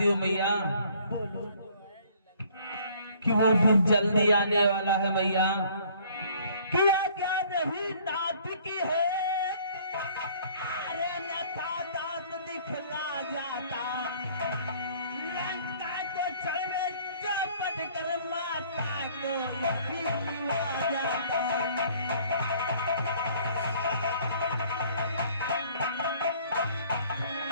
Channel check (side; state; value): both; inverted; correlation -0.57